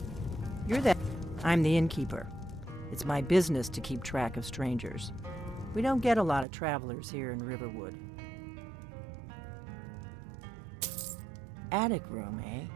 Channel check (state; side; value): drops out; left; at 6.5 s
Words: You're there. I'm the innkeeper. It's my business to keep track of strangers. We don't get a lot of travelers here in Riverwood. Attic room, eh?